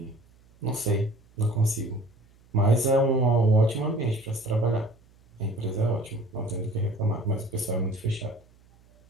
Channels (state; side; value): noise; right; hum, 29 dB below the sound